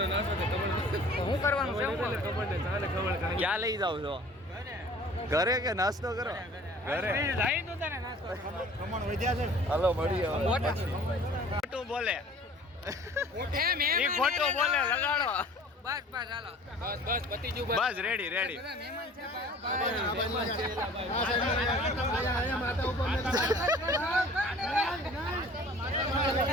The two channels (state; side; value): normal; both; correlation 0.48